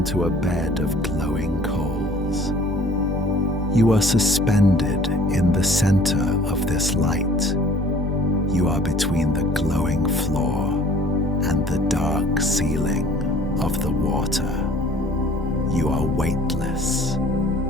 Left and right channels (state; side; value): normal; both; correlation 0.52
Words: a bed of glowing coals. You are suspended in the center of this light. You are between the glowing floor and the dark ceiling of the water. You are weightless.